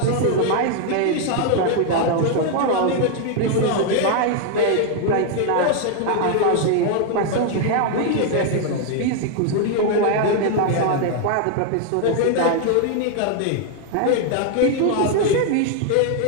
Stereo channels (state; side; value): different; both; correlation 0.00